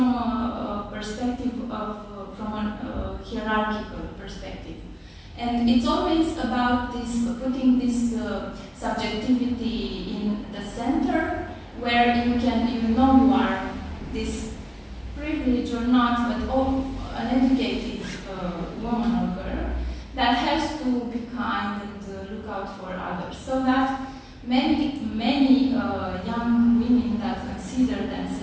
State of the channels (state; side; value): identical; both; correlation 1.00